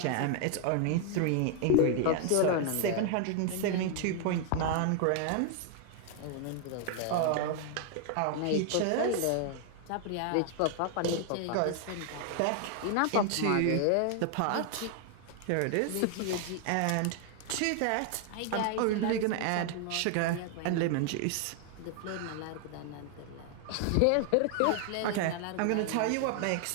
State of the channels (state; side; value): different; both; correlation 0.00